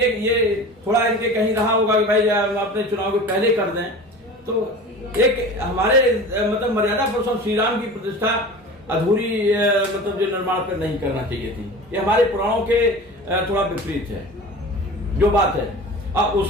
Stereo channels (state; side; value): normal; both; correlation 0.36